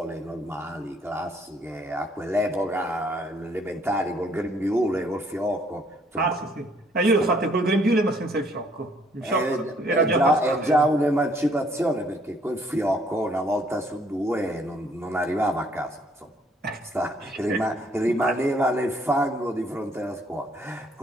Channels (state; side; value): normal; both; correlation 0.65